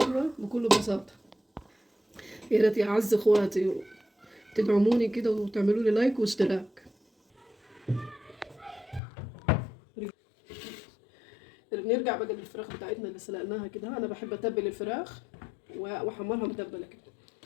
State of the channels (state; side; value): drops out; right; at 9.0 s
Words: بكل بساطة. يا ريت يا أعز إخواتي تدعموني كده وتعملوا لي لايك واشتراك. نرجع بقى للفراخ بتاعتنا اللي سلقناها كده. أنا بحب أتبل الفراخ وأحمرها متبلة كده.